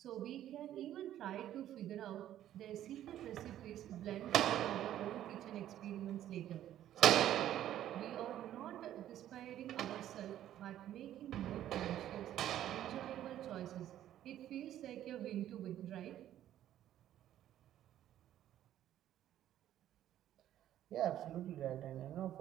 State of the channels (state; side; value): quieter; left; 12.0 dB